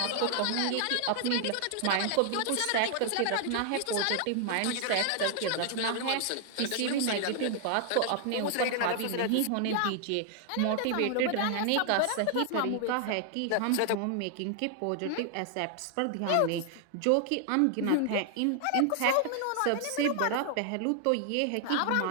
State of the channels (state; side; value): different; both; correlation 0.00